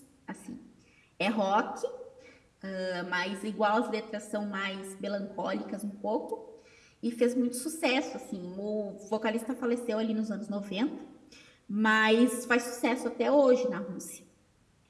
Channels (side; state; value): both; identical; correlation 1.00